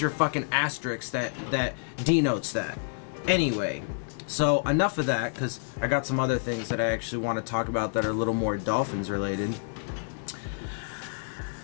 fucking asterisk that denotes that. Anyway, so enough of that, because I got some other things that I actually want to talk about that are a little more Dolphins related.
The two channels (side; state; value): right; silent; digital silence